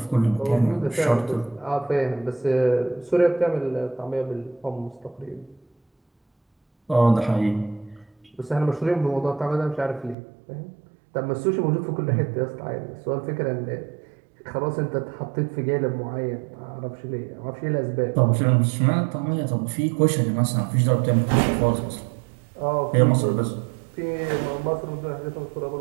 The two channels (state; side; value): drops out; left; at 10.2 s